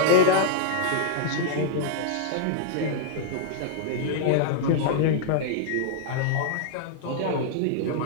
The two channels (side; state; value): both; different; correlation -0.01